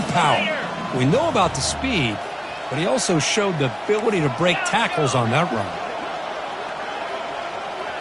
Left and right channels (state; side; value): identical; both; correlation 1.00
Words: power. We know about the speed, but he also showed the ability to break tackles on that run.